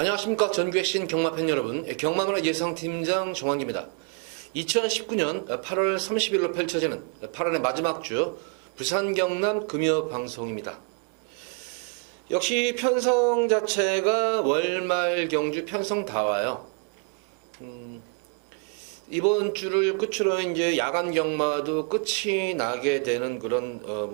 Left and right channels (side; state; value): left; quieter; 37.4 dB